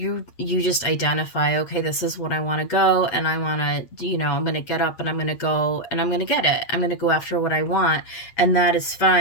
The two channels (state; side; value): late; right; 8.6 ms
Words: just identify, okay, this is what I want to go, and I want to, I'm going to get up and I'm going to go and I'm going to get it. I'm going to go after what I want, and that is